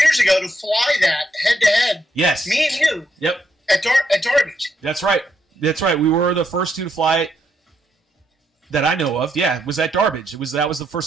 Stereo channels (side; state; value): both; normal; correlation 0.77